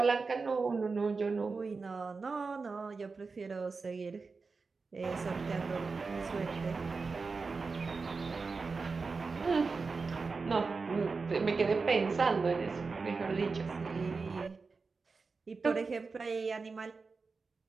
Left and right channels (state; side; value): quieter; left; 4.4 dB